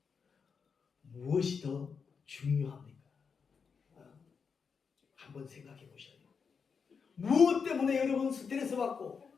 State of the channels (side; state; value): right; quieter; 5.8 dB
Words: 무엇이 더 중요합니까? 한번 생각해 보셔요. 무엇 때문에 여러분 스트레스 받고,